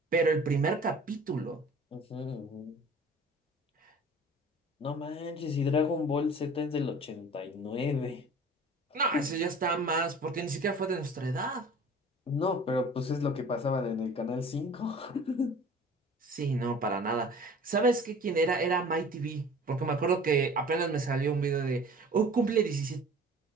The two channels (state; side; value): normal; both; correlation 0.45